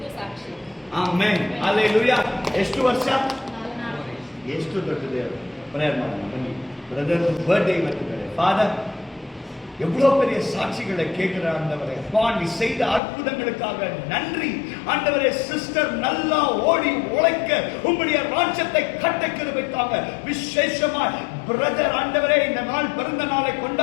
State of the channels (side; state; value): right; drops out; at 13.0 s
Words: ಸಾಕ್ಷಿ. ಆಮೆನ್. ಹಲ್ಲೆಲೂಯಾ. ಎಷ್ಟು ವರ್ಷ? ಎಷ್ಟು ದೊಡ್ಡ ದೇವರು. ಪ್ರೇಯರ್ ಮಾಡೋಣ ಬನ್ನಿ. Brother birthday ಇವತ್ತಿದ್ದಾರೆ. ஃபாதர், எவ்வளோ பெரிய சாட்சிகளை கேட்கிற ஆண்டவரே, நீ செய்த அற்புதங்களுக்காக நன்றி ஆண்டவரே. சிஸ்டர் நல்லா ஓடி உழைக்க உம்முடைய ராஜ்யத்தை கட்ட கிருபைக்காக விசேஷமாய் பிரதர் ஆண்டவரே இந்த நாள் பிறந்த நாளை